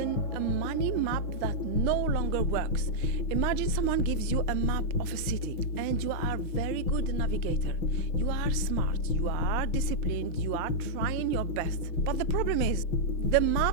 a money map that no longer works. Imagine someone gives you a map of a city and you are very good navigator. You are smart, you are disciplined, you are trying your best. But the problem is, the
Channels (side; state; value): right; late; 6.0 ms